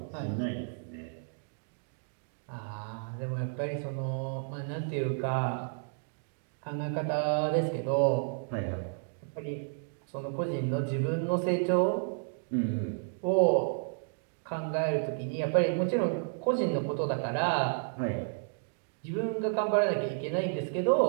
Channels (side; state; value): left; silent; digital silence